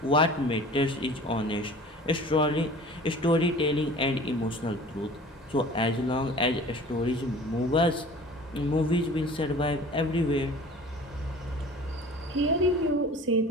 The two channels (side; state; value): both; normal; correlation 0.44